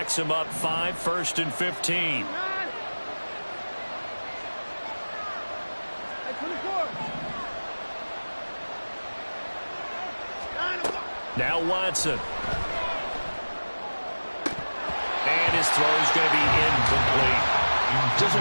him up 5, 1st and 15. Now Watson. And his throw is going to be incomplete. Just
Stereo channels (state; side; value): inverted; both; correlation -1.00